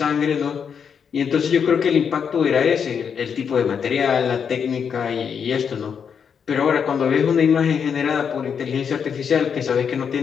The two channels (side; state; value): right; quieter; 7.0 dB